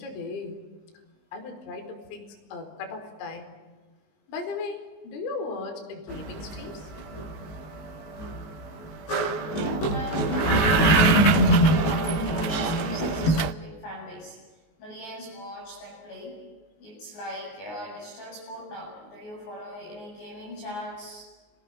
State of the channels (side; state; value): right; late; 19 ms